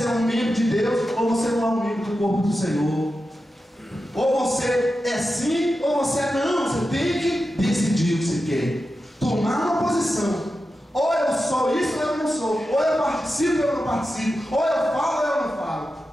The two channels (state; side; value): normal; both; correlation 0.91